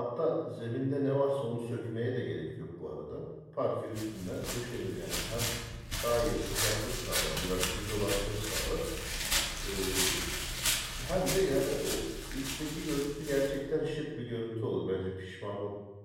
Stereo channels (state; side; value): identical; both; correlation 1.00